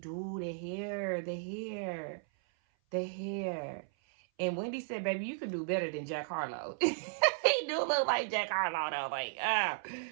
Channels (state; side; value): silent; left; 54 dB below the other